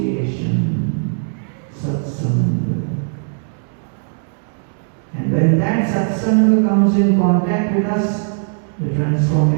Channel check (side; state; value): left; silent; digital silence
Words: satsanga. And when that satsanga comes in contact with us, the